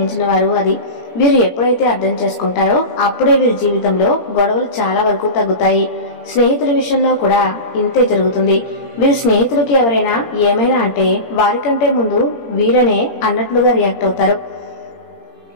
వారు అది. వీరు ఎప్పుడైతే అర్థం చేసుకుంటారో అప్పుడే వీరి జీవితంలో గొడవలు చాలా వరకు తగ్గుతాయి. స్నేహితుల విషయంలో కూడా ఇంతే జరుగుతుంది. వీరి స్నేహితులకి ఎవరైనా ఏమైనా అంటే వారికంటే ముందు వీరనే అన్నట్లుగా రియాక్ట్ అవుతారు.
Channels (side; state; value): right; late; 17 ms